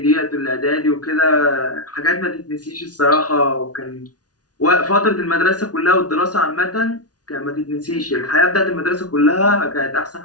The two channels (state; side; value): late; right; 0.69 ms